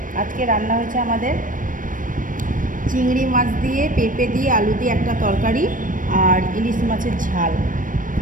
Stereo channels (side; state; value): left; late; 0.38 ms